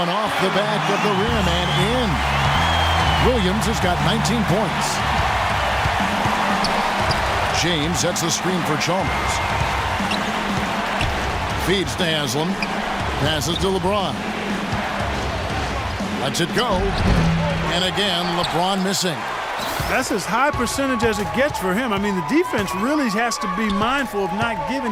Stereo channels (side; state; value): both; identical; correlation 1.00